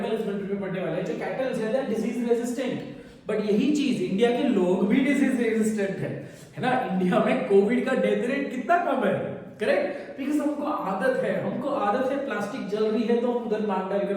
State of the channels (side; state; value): both; identical; correlation 1.00